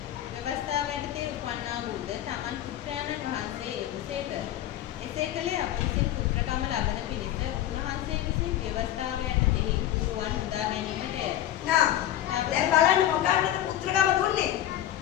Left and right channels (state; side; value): quieter; right; 12.6 dB